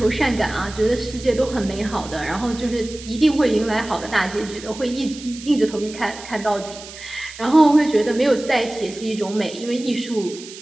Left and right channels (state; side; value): noise; right; hiss, 15 dB below the sound